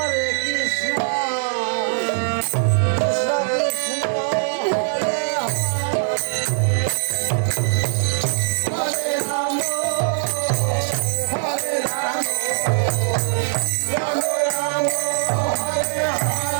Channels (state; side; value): silent; left; digital silence